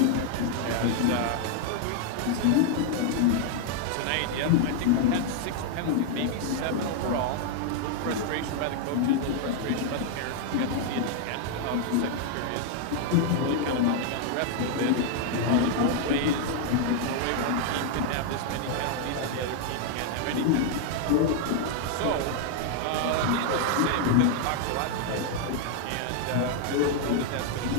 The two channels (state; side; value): different; both; correlation 0.00